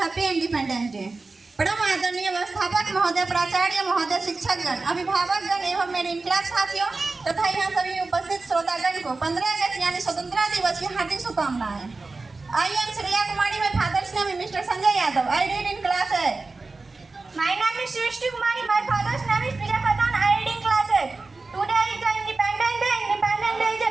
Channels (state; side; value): quieter; left; 3.7 dB